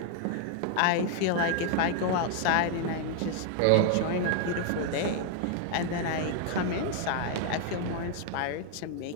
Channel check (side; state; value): both; different; correlation 0.00